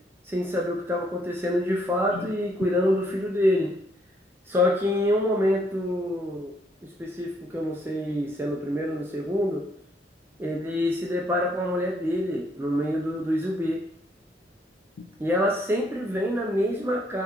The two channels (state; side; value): normal; both; correlation 0.69